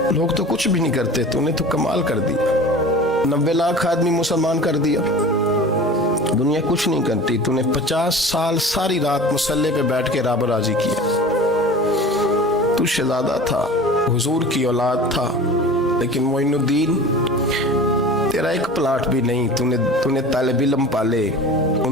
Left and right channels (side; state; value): both; normal; correlation 0.38